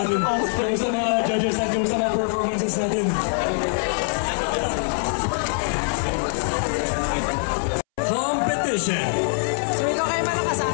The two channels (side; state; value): right; silent; 63 dB below the other